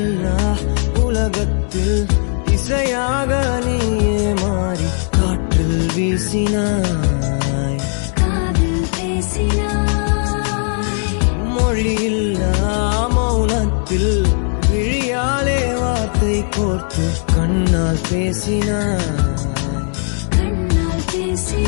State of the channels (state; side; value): silent; right; 62 dB below the other